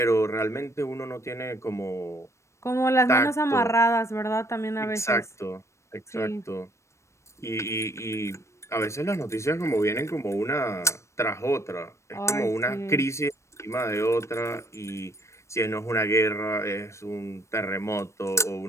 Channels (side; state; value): right; late; 0.14 ms